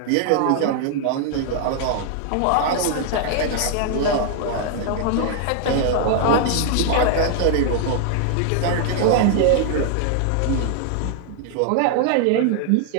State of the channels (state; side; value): different; both; correlation 0.00